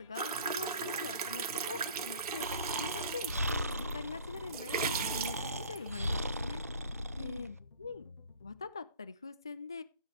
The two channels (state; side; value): inverted; both; correlation -0.46